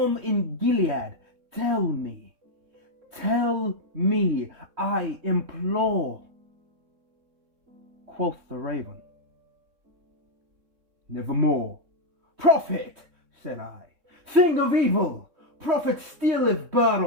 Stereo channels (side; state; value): left; late; 3.6 ms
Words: in Gilead? Tell me, I implore. Quoth the raven, nevermore. Prophet, said I, thing of evil, prophet stealeth bird